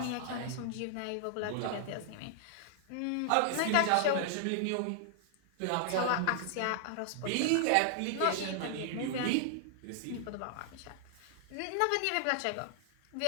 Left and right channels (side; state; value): both; different; correlation -0.01